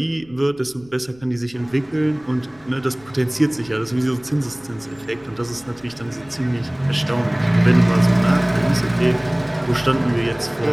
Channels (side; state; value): left; noise; rumble, 27 dB below the sound